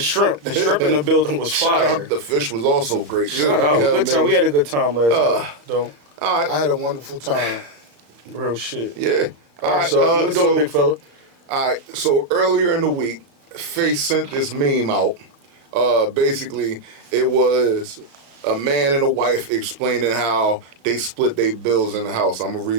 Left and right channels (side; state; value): left; late; 34 ms